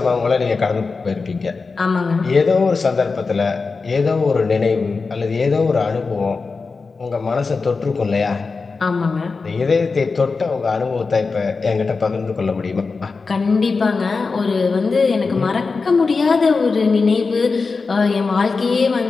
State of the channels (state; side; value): quieter; right; 4.4 dB